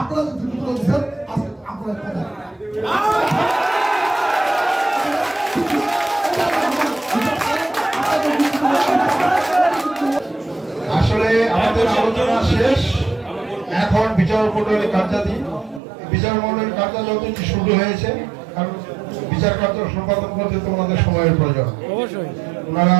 যে যুক্তিগুলো দিচ্ছেন আজকে আপনারা কথা আসলে আমাদের আলোচনা শেষ। এখন বিচারমণ্ডলীর কার্যালয় শুরু হয়েছে, কারণ বিচার কার্য সম্পাদন করতে তো ওনাদের সময়ের প্রয়োজন। অবশ্যই ওনারা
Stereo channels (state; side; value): drops out; left; at 15.8 s